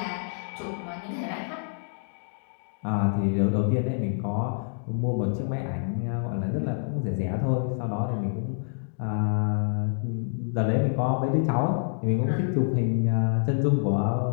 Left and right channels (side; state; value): right; silent; digital silence